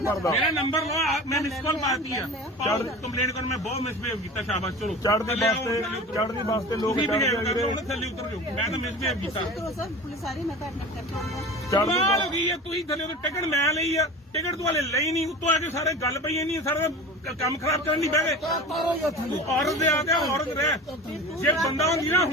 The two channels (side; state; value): both; normal; correlation 0.35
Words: ਭਰਦਾ। ਮੇਰਾ ਨੰਬਰ ਲਓ, ਮੈਂ ਮਿਸ ਕਾਲ ਮਾਰਤੀ ਆ। ਕੰਪਲੇਂਟ ਕਰਨ ਮੈਂ ਬਹੁਤ ਮਿਸਬਿਹੇਵ ਕੀਤਾ, ਸ਼ਾਬਾਸ਼ ਚਲੋ। ਚੜ੍ਹਦੀ ਬੱਸ ਤੇ ਲੋਕ ਬਿਹੇਵ ਚੜ੍ਹਦੇ ਕਰਦੇ ਵੀਰੇ। ਹੁਣ ਥੱਲੇ ਉਤਰ ਜਾਓ, ਮੈਂ ਤਾਂ ਮਿਸਬਿਹੇਵ ਕੀਤਾ। ਕਰੋ ਸਰ, ਪੁਲਿਸ ਆ ਰਹੀ, ਮੈਂ ਤਾਂ ਐਡਮਿਟ ਕਰਕੇ ਆਉਂਗਾ। ਚੜ੍ਹਦੀ ਕਮਾਲ ਹੋ ਬੱਸ ਗਈ ਹੈ, ਤੁਸੀਂ ਥੱਲੇ ਉਤਰ ਟਿਕਟ ਮੈਂ ਲਈ ਆ, ਟਿਕਟ ਤੋਂ ਹਲੇ ਲਈ ਨਹੀਂ, ਉੱਤੋਂ ਆ ਕੇ ਸਾਰੇ ਗੱਲ ਪਈ ਨਹੀਂ, ਸਾਰਾ ਕੰਮ ਖਰਾਬ ਕਰਨ ਦੀ ਬਹਿ ਗਏ। ਤਾਰੋ ਜਾਂ ਥੱਲੇ ਔਰਤ ਦੇ ਆ ਗਿਆ, ਔਰਤ ਰਹਿ। ਜੇ ਬੰਦਾ ਹੁੰਦੀ ਨਾ